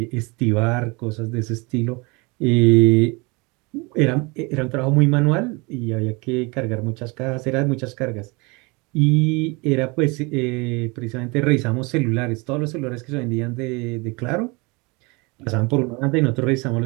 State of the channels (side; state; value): left; quieter; 27.4 dB